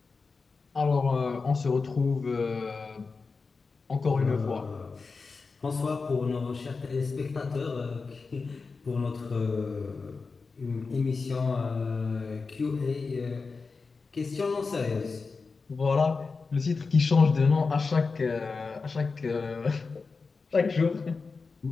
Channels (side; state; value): right; quieter; 4.4 dB